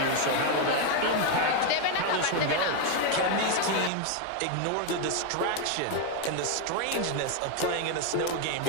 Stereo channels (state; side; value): different; both; correlation 0.01